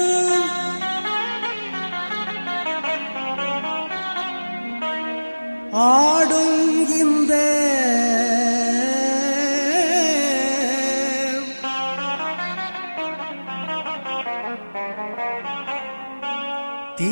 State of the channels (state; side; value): inverted; both; correlation -1.00